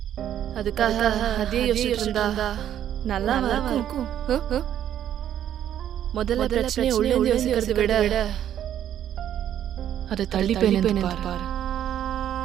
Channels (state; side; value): quieter; left; 10.6 dB